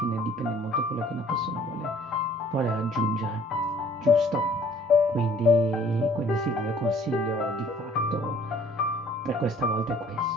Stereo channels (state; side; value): normal; both; correlation 0.56